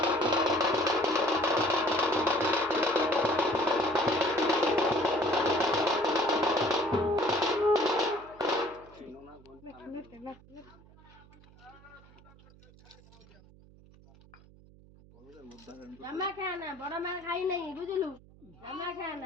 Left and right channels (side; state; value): right; noise; hum, 24 dB below the sound